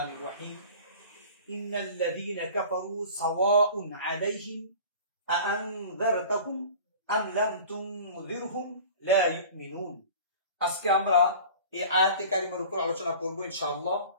রহিম। ইন্নাল্লাযীনা কাফারু সাওয়াউন আলাইহিম আআনযারতাহুম আম লাম তুনযিরহুম লা ইউমিনুন। আজকে আমরা এই আয়াতে কারিমার উপর আলোচনা করব ইনশাআল্লাহ।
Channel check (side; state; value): both; inverted; correlation -0.41